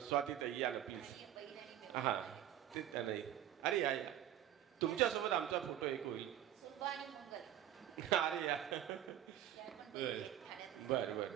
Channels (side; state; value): left; quieter; 11.5 dB